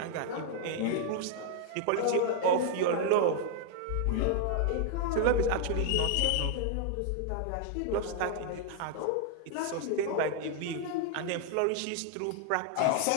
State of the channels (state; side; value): different; both; correlation 0.00